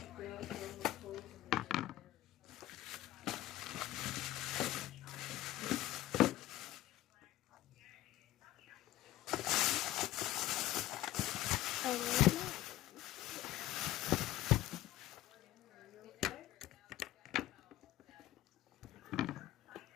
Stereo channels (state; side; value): quieter; right; 15.3 dB